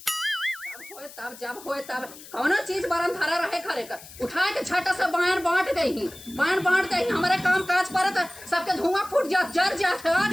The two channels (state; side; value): noise; left; hiss, 17 dB below the sound